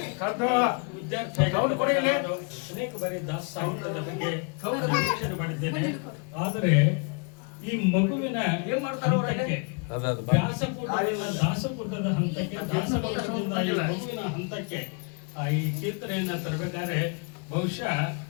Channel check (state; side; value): quieter; right; 35.2 dB